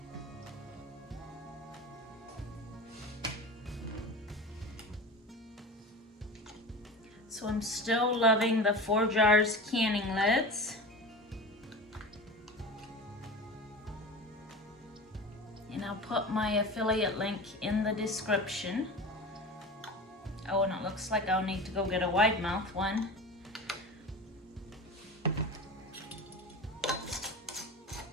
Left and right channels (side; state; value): both; normal; correlation 0.31